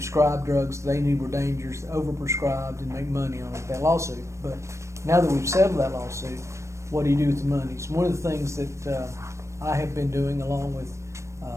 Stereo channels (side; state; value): left; late; 0.14 ms